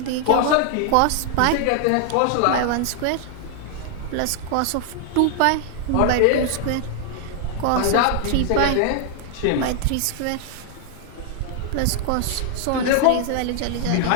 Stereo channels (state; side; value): different; both; correlation 0.00